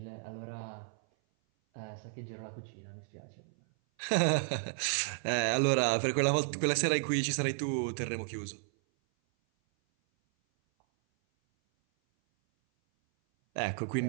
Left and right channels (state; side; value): silent; left; 56 dB below the other